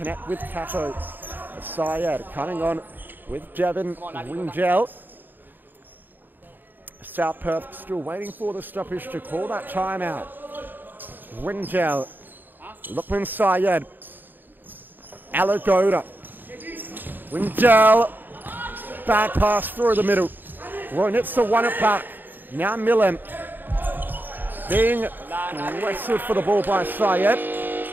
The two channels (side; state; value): left; late; 0.090 ms